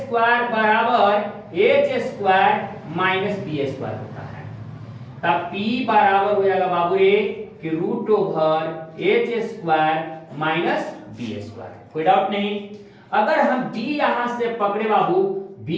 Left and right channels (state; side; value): identical; both; correlation 1.00